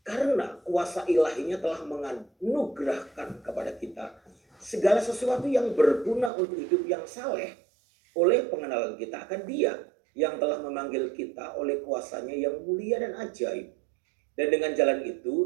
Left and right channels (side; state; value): left; drops out; at 6.3 s